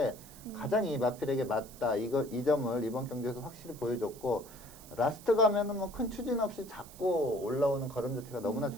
가장 이 마필에게 맞다. 이 점을 이번 경기에서 확실히 보여줬고, 라스트 가면은 뭐 큰 추진 없이 잡고 올라오는 걸음 자체가 너무나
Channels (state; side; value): noise; right; hiss, 19 dB below the sound